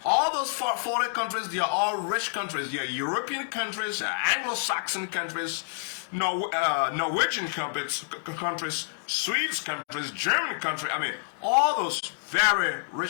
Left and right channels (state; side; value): silent; right; digital silence